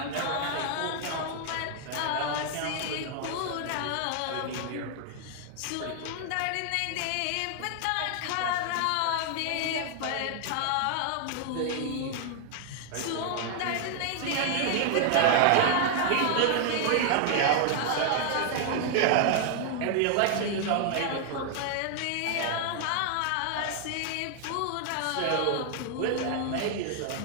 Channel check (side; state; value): both; different; correlation 0.00